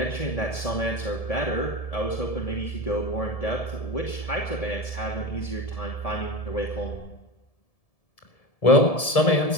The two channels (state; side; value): late; right; 1.7 ms